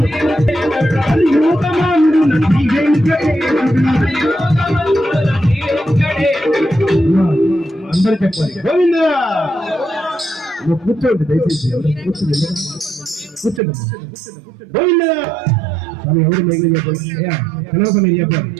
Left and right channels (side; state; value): left; drops out; at 13.6 s